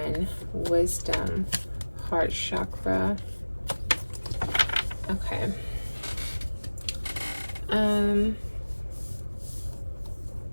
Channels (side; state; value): both; inverted; correlation -1.00